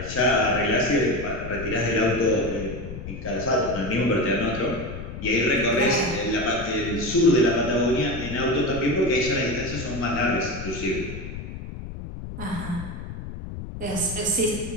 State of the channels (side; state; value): left; noise; rumble, 9 dB below the sound